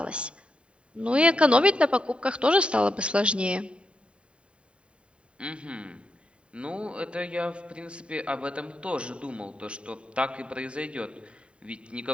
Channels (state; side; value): late; left; 0.057 ms